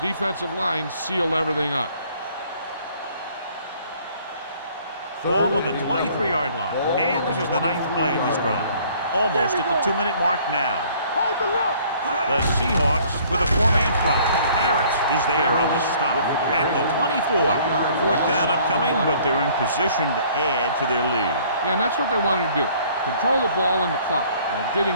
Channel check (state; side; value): inverted; both; correlation -0.57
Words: line sealed everything up. Ball on the 23-yard line. And this is the 9th play of this drive. Almost at the 2-minute mark now. Hold the look. The Seahawks with a 4-man front. Harris is there on the stop at the 24. 4th down upcoming, but they're in position to add to their lead. Yeah, and that's what they wanted to do. Control the ball and the clock while